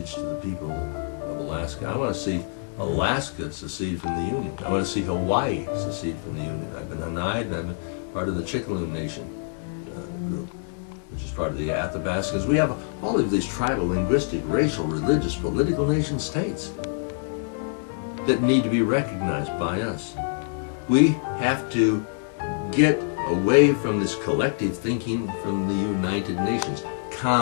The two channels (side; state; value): right; silent; 61 dB below the other